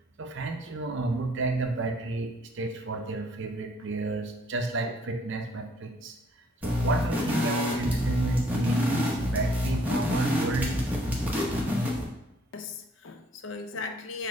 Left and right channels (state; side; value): normal; both; correlation 0.63